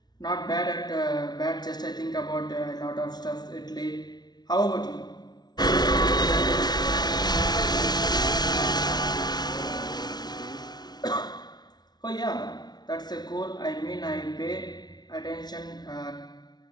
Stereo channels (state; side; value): late; right; 0.19 ms